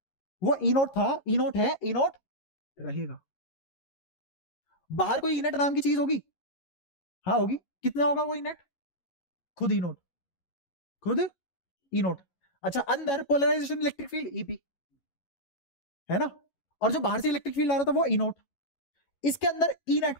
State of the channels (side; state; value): right; late; 11 ms